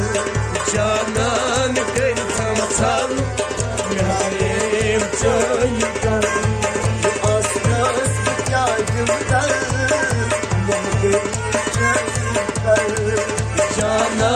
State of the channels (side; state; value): both; identical; correlation 1.00